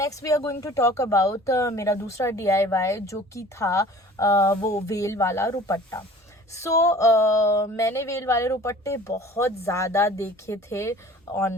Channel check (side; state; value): both; normal; correlation 0.46